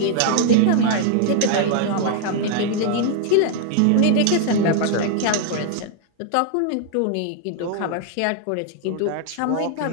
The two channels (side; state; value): both; different; correlation 0.00